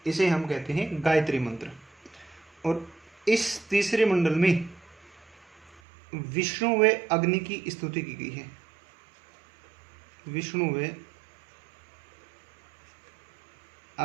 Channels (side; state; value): left; drops out; at 5.8 s